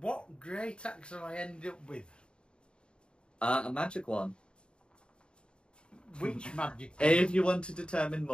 what great axe have I ended up with? A magic one. Which magic? If you want to determine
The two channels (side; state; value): right; late; 0.052 ms